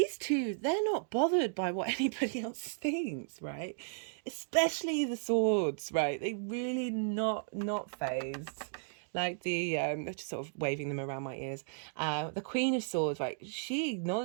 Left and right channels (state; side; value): silent; left; digital silence